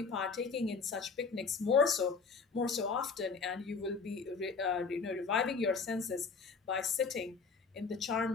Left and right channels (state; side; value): quieter; right; 4.9 dB